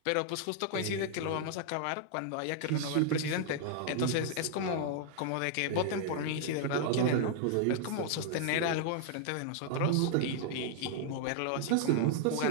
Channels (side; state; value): both; different; correlation 0.00